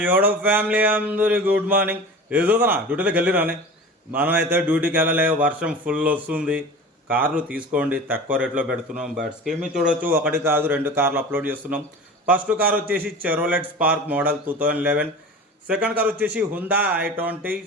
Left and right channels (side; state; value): both; normal; correlation 0.35